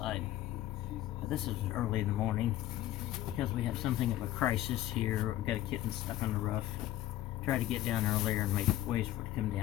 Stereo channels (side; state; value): right; quieter; 14.1 dB